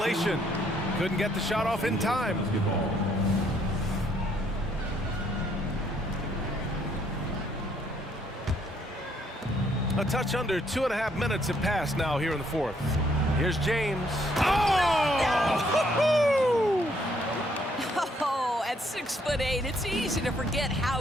Couldn't get the shot off in time. A touch under 2.5 minutes have passed now here in the fourth. Here's James. Oh! Oh, at 6'8", it's easy to forget how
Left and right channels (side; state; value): both; normal; correlation 0.69